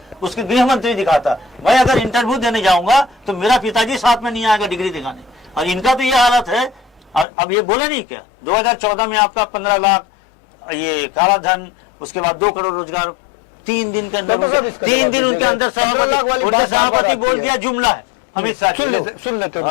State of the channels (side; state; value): right; drops out; at 7.2 s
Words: उसके गृह मंत्री दिखाता। मैं अगर इंटरव्यू देने जाऊंगा तो मेरा पिताजी साथ में नहीं आएगा डिग्री दिखाने। और इनका तो ये हालत है। और अब ये बोले नहीं क्या 2014 में आपका 15 लाख ये काला धन, उसके बाद 2 करोड़ रोजगार 3 दिन के अंदर, 3 दिन उनके अंदर 15 लाख वाली बात सभापति बोल दिया। जुमला है, अमित शाह सुन लेते